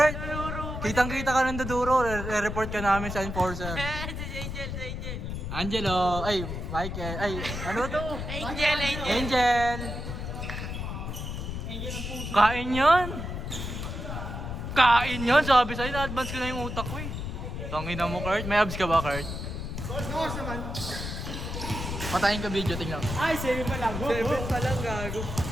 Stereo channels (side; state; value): left; noise; rumble, 5 dB below the sound